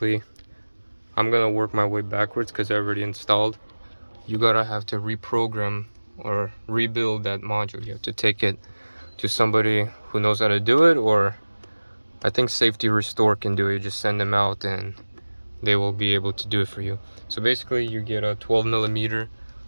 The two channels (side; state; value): both; inverted; correlation -1.00